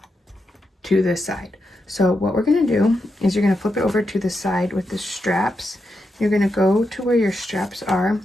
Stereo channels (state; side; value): normal; both; correlation 0.86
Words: to this side. So what we're going to do is you're going to flip it over to the side with the straps. You're going to go to where your straps are,